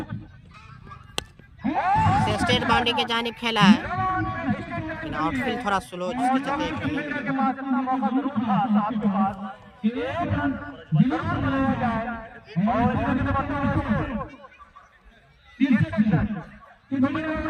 स्टेट बाउंड्री के जानिब खेला है, लेकिन आउटफील्ड थोड़ा स्लो जिसके चलते के पास इतना मौका जरूर था साहब के पास कि एक रन जरूर बनाया जाए और इसके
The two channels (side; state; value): both; identical; correlation 1.00